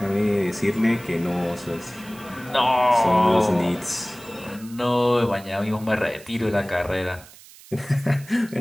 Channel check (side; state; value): right; noise; hiss, 21 dB below the sound